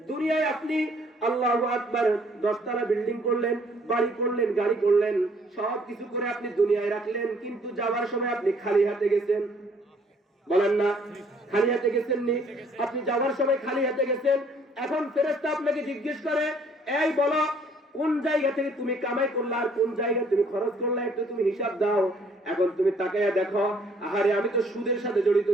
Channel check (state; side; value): normal; both; correlation 0.62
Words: দুনিয়ায় আপনি আল্লাহু আকবার 10 তলা বিল্ডিং করলেন, বাড়ি করলেন, গাড়ি করলেন, সব কিছু করে আপনি দুনিয়ায় রাখলেন, কিন্তু যাওয়ার সময় আপনি খালি হাতে গেছেন। বলেন না, খালি হাতে গেছেন নি? আপনি যাওয়ার সময় খালি হাতে গেছেন। এখন ফেরেশতা আপনাকে জিজ্ঞেস করে, এই বলো কোন জায়গা থেকে তুমি কামাই করলা আর কোন জায়গা তুমি খরচ করলা, একটু তুমি হিসাব দাও। এখন তুমি তাকায়া দেখো, আহারে আমি তো সুদের সাথে জড়িত